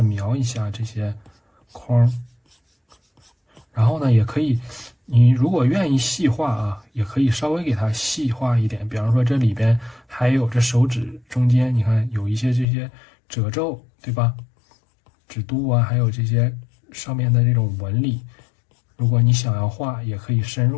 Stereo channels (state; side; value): drops out; right; at 12.7 s